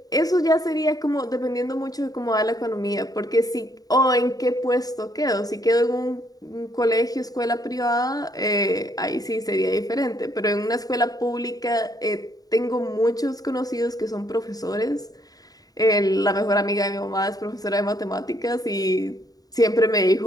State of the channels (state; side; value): late; right; 0.18 ms